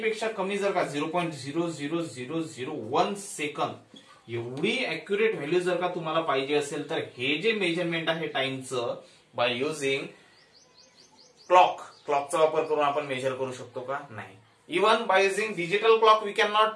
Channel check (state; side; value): identical; both; correlation 1.00